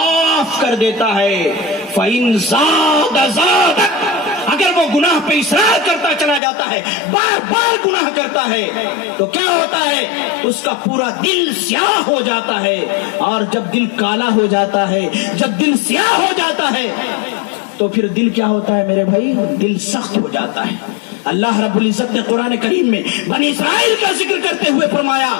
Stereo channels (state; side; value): drops out; right; at 6.4 s